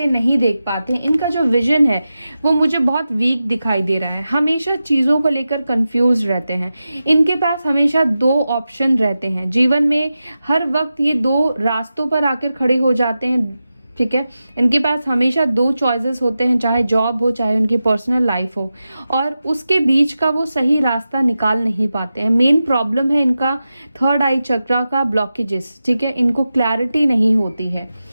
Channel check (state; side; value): inverted; both; correlation -0.92